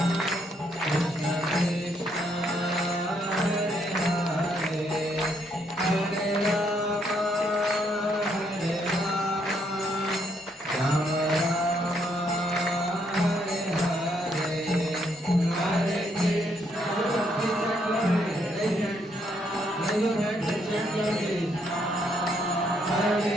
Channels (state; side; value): normal; both; correlation 0.73